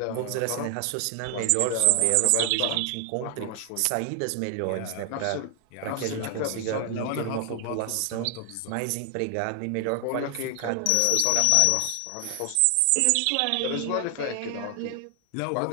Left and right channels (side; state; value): both; different; correlation 0.00